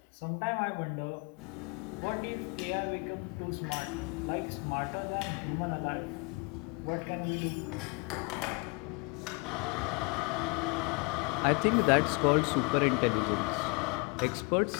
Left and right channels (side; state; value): right; quieter; 29.2 dB